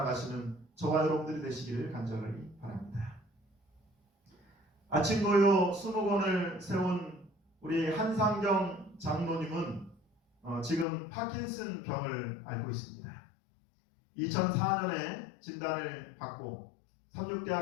저와 여러분들이 되시기를 간절히 바랍니다. 아침고요 20권을 세운 우리 한상경 장로님은 지금 파킨슨 병을 앓고 있습니다. 2004년에 진단을 받고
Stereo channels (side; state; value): right; drops out; at 10.9 s